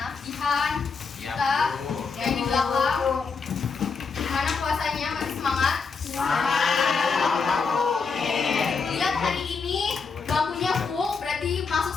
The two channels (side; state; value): right; quieter; 5.0 dB